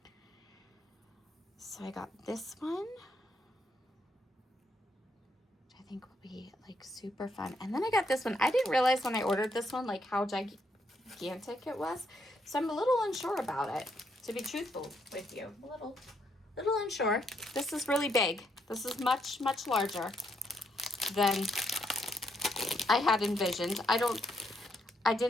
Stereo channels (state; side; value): normal; both; correlation 0.75